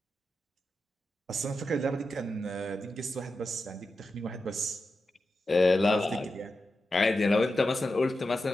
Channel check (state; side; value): normal; both; correlation 0.90